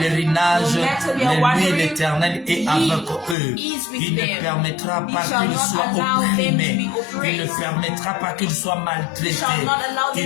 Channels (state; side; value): drops out; right; at 3.4 s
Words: no matter their mais lui, wandering, l'Éternel, est He avec eux. is with Il ne them. permettra He pas shall qu'ils not soient allow them to opprimés. be Il ne oppressed. permettra pas qu'ils soient He maltraités. shall not allow them